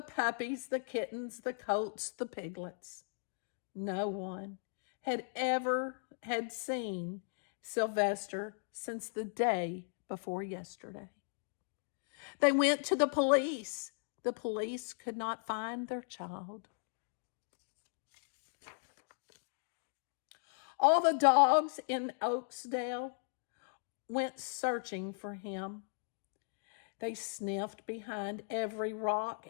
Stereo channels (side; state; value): right; silent; digital silence